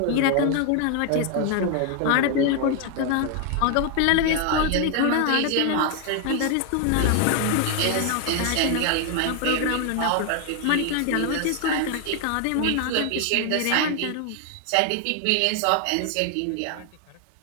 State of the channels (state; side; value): different; both; correlation 0.00